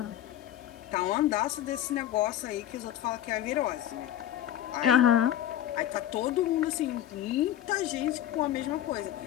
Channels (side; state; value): right; quieter; 11.9 dB